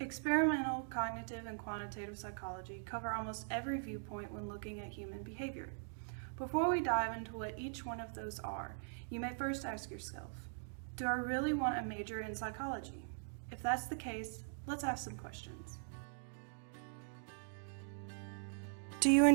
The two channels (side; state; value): left; silent; digital silence